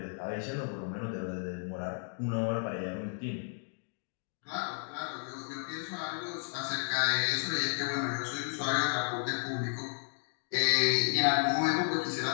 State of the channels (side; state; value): right; silent; 56 dB below the other